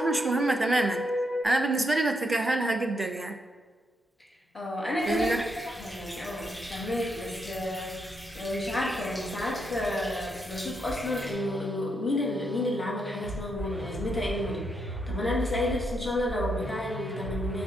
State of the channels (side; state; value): both; normal; correlation 0.79